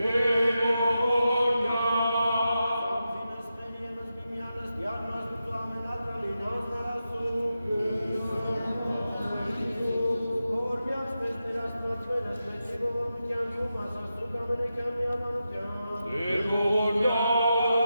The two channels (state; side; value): inverted; both; correlation -0.89